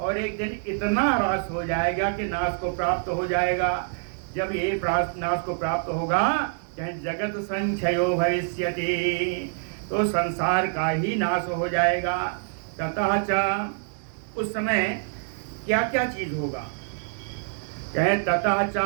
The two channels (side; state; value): left; silent; 61 dB below the other